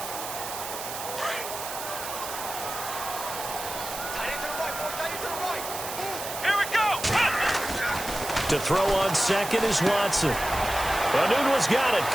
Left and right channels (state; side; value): noise; right; hiss, 8 dB below the sound